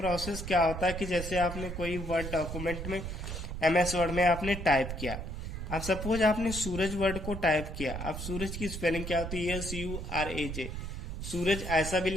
क्या होता है कि जैसे आपने कोई वर्ड डॉक्यूमेंट में MS वर्ड में आपने टाइप किया, अब सपोज आपने सूरज वर्ड को टाइप किया, अब सूरज की स्पेलिंग क्या होती है? SURAJ। सूरज ऐसा भी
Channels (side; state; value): right; noise; rumble, 6 dB below the sound